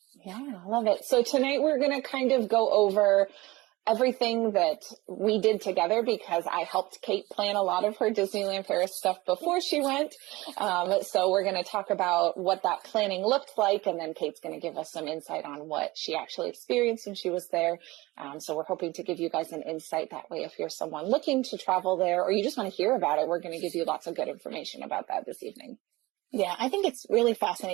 Yeah, I love it. So tonight we're going to kind of go over everything that we did together because I helped Kate plan a lot of her Disneyland Paris stuff before she went. So we're going to talk about what that planning looked like, and then Kate's going to give us some insight on what she actually experienced when she was there. So we're hoping to give you guys an insight that way if you're someone looking to travel there or you just want to hear about it. We're going to give you lots of good information about that this evening. Yeah, I think it's really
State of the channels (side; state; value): left; quieter; 20.6 dB